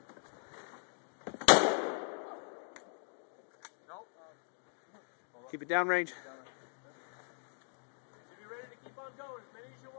Keep it downrange. If you're ready to keep on going, as many as you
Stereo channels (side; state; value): right; silent; digital silence